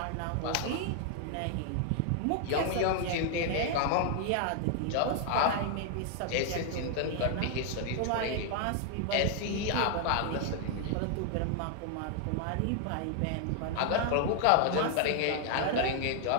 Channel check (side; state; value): both; different; correlation 0.00